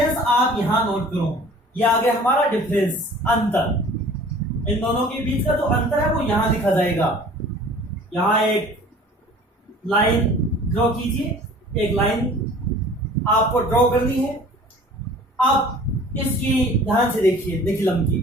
आप यहां नोट करो। ये आ गया हमारा डिफरेंस, अंतर। इन दोनों के बीच का जो अंतर है वो यहां लिखा जाएगा। यहां एक लाइन ड्रॉ कीजिए, एक लाइन आपको ड्रॉ करनी है। अब इसकी ध्यान से देखिए, निखिलम की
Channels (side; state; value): both; normal; correlation 0.47